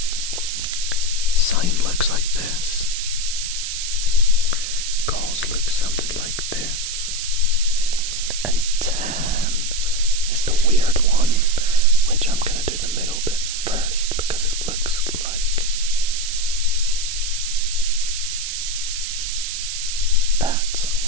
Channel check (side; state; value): right; noise; hiss, 4 dB below the sound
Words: Sine looks like this. Cos looks something like this. And tan is the weird one, which I'm going to do the middle bit first because it looks like that,